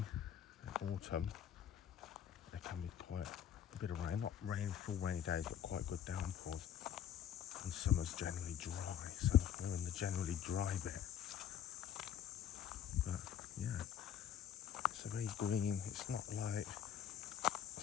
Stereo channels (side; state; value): right; quieter; 9.7 dB